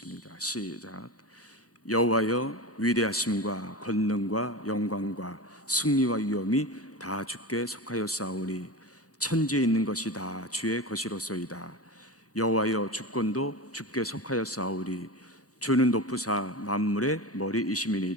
시작. 여호와여, 위대하심과 권능과 영광과 승리와 위엄이 다 주께 속하였사오니 천지에 있는 것이 다 주의 것이로소이다. 여호와여, 주권도 주께 속하였사오니 주는 높으사 만물의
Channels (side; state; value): both; normal; correlation 0.26